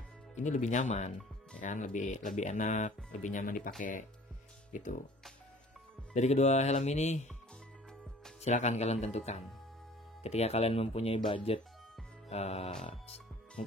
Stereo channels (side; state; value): both; normal; correlation 0.49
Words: ini lebih nyaman ya kan, lebih enak, lebih nyaman dipakai gitu. Dari kedua helm ini silakan kalian tentukan. Ketika kalian mempunyai budget